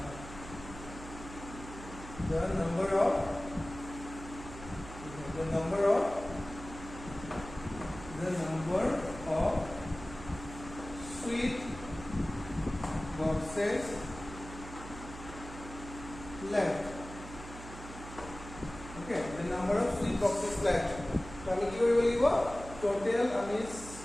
The number of sweet boxes left. Okay, the number of sweet boxes left. So আমি কি কৰিব লাগিব? Total আমি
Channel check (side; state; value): right; noise; hum, 13 dB below the sound